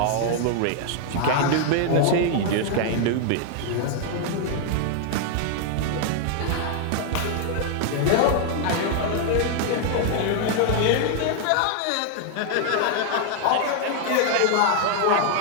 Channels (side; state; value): both; different; correlation 0.00